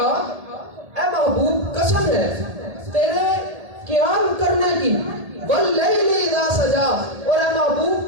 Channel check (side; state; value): left; late; 1.8 ms